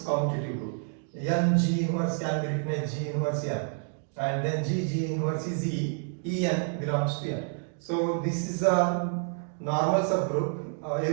commutative group. N G inverse can be written as G inverse n, and then G inverse is E n belongs to n. So this is a normal subgroup.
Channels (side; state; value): left; silent; 56 dB below the other